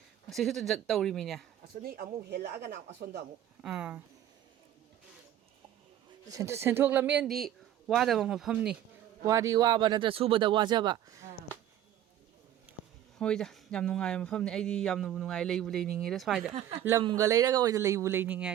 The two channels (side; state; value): left; quieter; 11.4 dB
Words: ꯁꯤꯁꯨ ꯇꯧꯔꯤꯃꯤꯅꯦ ꯑꯁꯣꯝꯗꯤ ꯑꯃꯨꯛ ꯍꯦꯜꯂꯛꯑꯒꯅ ꯑꯁꯣꯝꯗ ꯑꯃꯨꯛ ꯁꯦꯟꯊꯣꯛ ꯂꯝꯕꯦꯟꯗꯤ ꯋꯥꯗꯕ ꯃꯐꯝꯅꯤ ꯋꯥꯗꯤ ꯋꯥꯕ ꯅꯠꯇ꯭ꯔ ꯁꯨꯕꯗ ꯋꯥꯖꯕ ꯍꯣꯏꯗ ꯌꯥꯝ ꯅꯨꯡꯉꯥꯏꯕ ꯃꯐꯝꯅꯤ ꯑꯩꯗꯤ ꯌꯥꯝꯅꯕꯨ ꯅꯨꯡꯉꯥꯏ ꯂꯩꯕꯨ ꯂꯩꯅꯤꯡꯉꯦꯗ ꯁ꯭ꯋꯥꯏꯗ ꯂꯝꯒ ꯂꯩꯔꯒ ꯑꯣꯏꯅ ꯂꯩꯕꯨ ꯂꯩꯅꯤꯡꯉꯦ